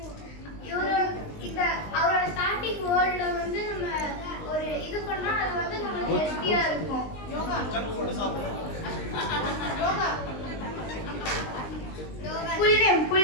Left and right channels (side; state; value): right; late; 19 ms